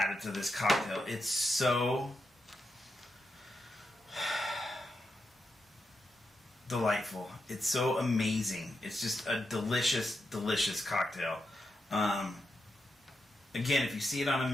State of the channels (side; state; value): both; normal; correlation 0.85